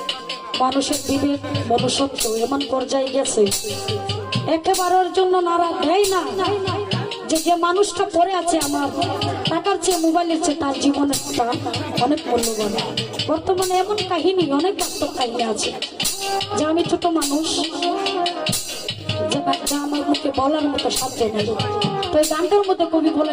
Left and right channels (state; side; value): identical; both; correlation 1.00